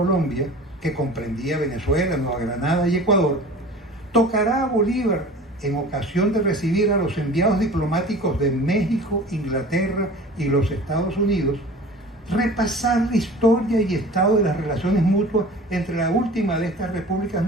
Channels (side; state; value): both; normal; correlation 0.41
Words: que comprendía Venezuela, Nueva Granada y Ecuador, tocará a Bolívar, en ocasión de recibir a los enviados diplomáticos de México, Inglaterra y los Estados Unidos, repasar la historia y estado de las relaciones mutuas entre la última de estas repúblicas